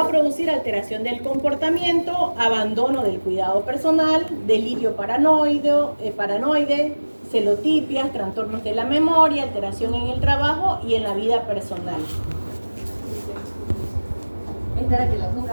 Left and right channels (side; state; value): both; inverted; correlation -1.00